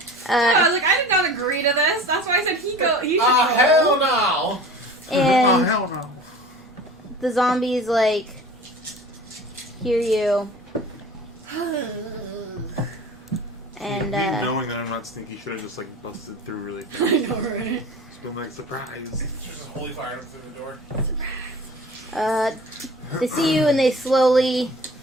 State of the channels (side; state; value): both; normal; correlation 0.40